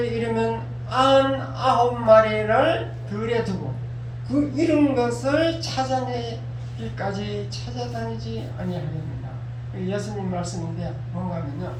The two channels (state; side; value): identical; both; correlation 1.00